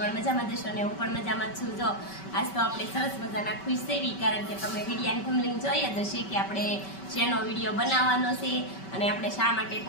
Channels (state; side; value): late; right; 5.2 ms